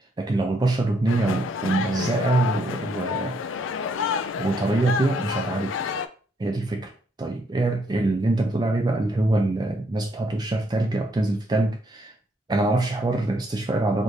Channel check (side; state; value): both; normal; correlation 0.72